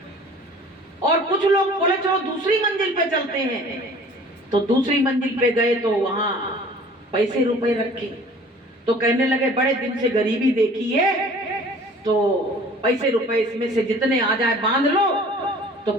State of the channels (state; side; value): normal; both; correlation 0.48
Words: और कुछ लोग बोले चलो दूसरी मंजिल पे चलते हैं, तो दूसरी मंजिल पे गए तो वहां पैसे रुपए रखे, तो कहने लगे बड़े दिन से गरीबी देखी है, तो पैसे रुपए इसमें से जितने आ जाए बांध लो, तो